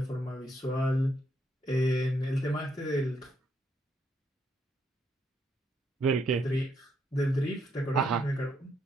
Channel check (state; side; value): normal; both; correlation 0.76